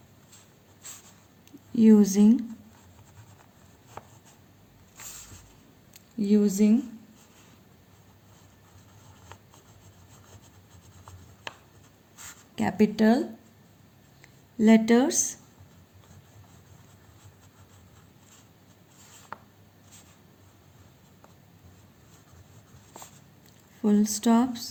using capital letters, full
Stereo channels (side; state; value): both; identical; correlation 1.00